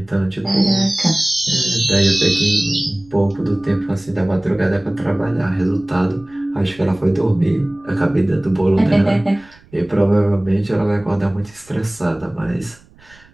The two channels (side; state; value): right; noise; rumble, 28 dB below the sound